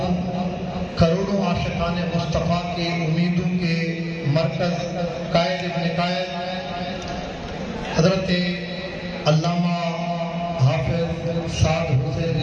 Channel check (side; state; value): both; identical; correlation 1.00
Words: کروڑوں عاشقان مصطفیٰ کے امیدوں کے مرکز قائد ابن قائد حضرت علامہ حافظ سعد حسین